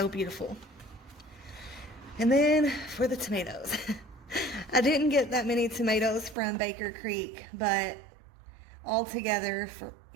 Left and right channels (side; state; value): left; drops out; at 6.4 s